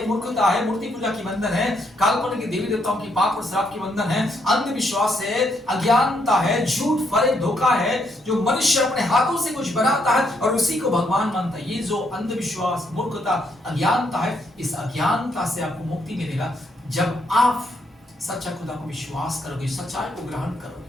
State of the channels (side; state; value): both; normal; correlation 0.75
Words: मूर्खता है, मूर्ति पूजा की बंधन है, काल्पनिक देवी देवताओं की, पाप और श्राप की बंधन है, अंधविश्वास है, अज्ञानता है, झूठ फरेब धोखा है, जो मनुष्य अपने हाथों से कुछ बनाता है और उसी को भगवान मानता है, ये जो अंधविश्वास, मूर्खता, अज्ञानता है, इस अज्ञानता से आपको मुक्ति मिलेगा जब आप सच्चा खुदा को विश्वास करोगे, सच्चाई को ग्रहण